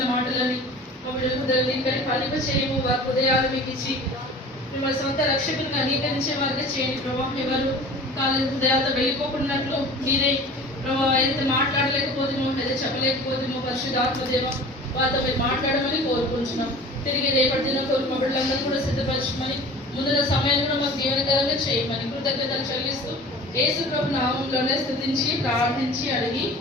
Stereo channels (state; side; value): normal; both; correlation 0.41